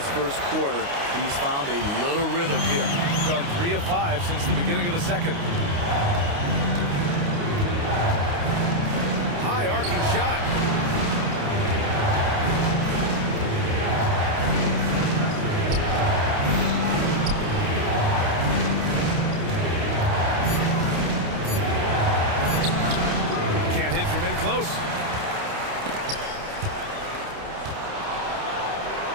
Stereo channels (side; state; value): left; late; 29 ms